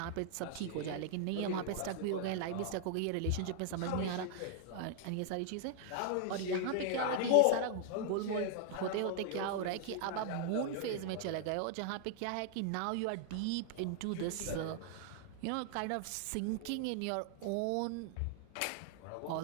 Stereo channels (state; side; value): different; both; correlation 0.00